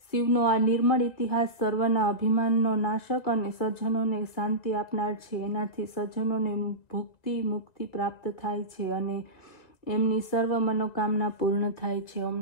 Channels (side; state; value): right; late; 1.8 ms